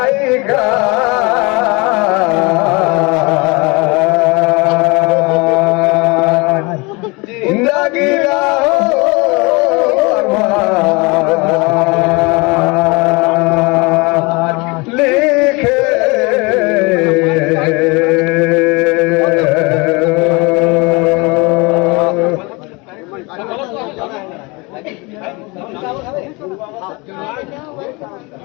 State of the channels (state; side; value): quieter; right; 26.9 dB